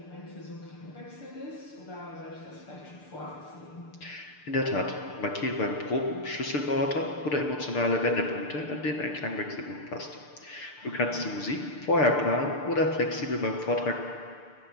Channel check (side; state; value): right; late; 6.7 ms